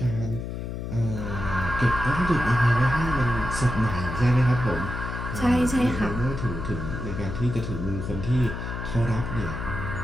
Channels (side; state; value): left; noise; hum, 6 dB below the sound